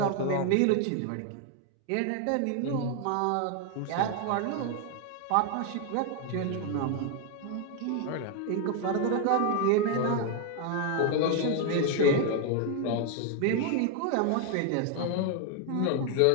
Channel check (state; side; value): different; both; correlation 0.01